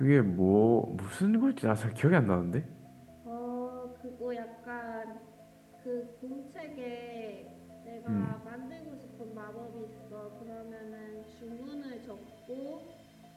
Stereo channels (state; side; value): identical; both; correlation 1.00